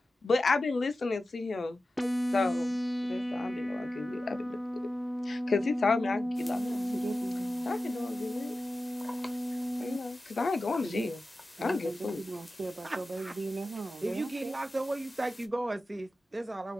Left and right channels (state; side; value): normal; both; correlation 0.94